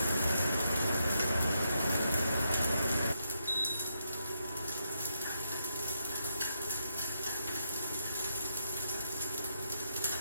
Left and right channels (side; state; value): both; inverted; correlation -0.81